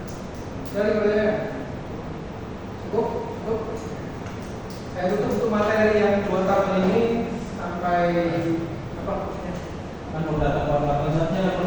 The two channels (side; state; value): both; identical; correlation 1.00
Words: Dari kerjanya cukup. Saya tutup untuk materi yang 2 tahun ini sampai apa? Kan udah data kualitasnya